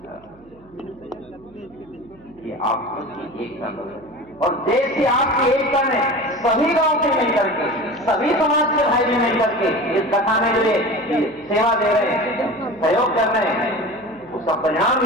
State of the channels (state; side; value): noise; right; hum, 27 dB below the sound